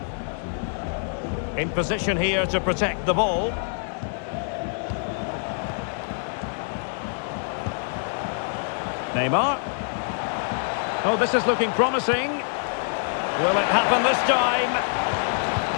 In position here to protect the ball. Neymar. Oh, this is looking promising. Will it happen this time?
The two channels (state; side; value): silent; right; digital silence